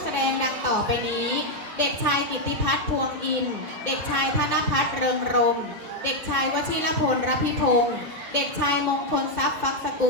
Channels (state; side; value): late; left; 2.1 ms